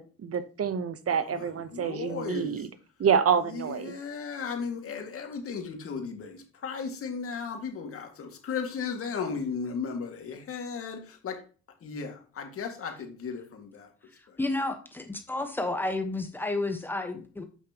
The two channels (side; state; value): both; normal; correlation 0.07